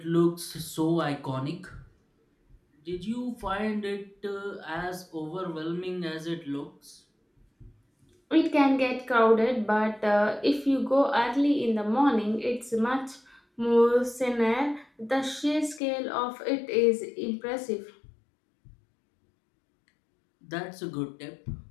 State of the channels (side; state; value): right; drops out; at 15.8 s